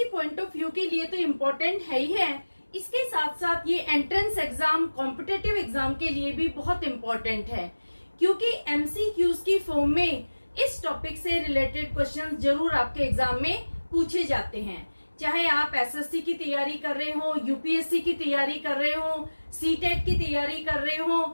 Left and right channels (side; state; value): both; inverted; correlation -1.00